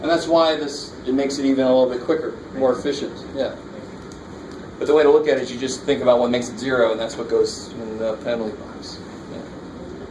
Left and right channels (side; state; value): both; identical; correlation 1.00